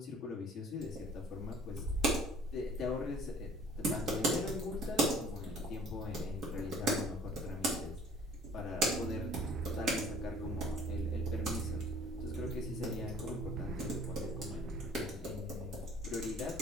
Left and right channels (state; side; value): normal; both; correlation 0.53